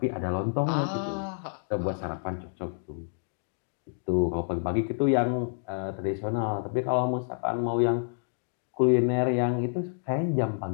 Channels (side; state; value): right; silent; digital silence